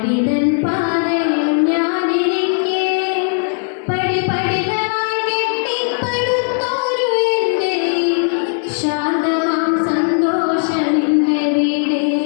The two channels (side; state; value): right; silent; 57 dB below the other